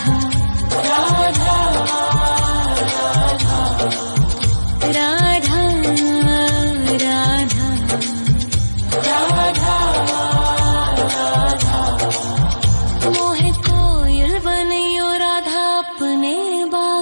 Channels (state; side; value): inverted; both; correlation -1.00